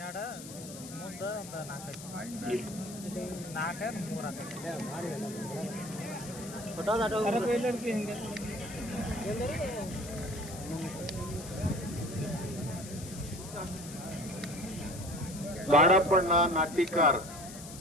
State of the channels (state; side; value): noise; left; hiss, 13 dB below the sound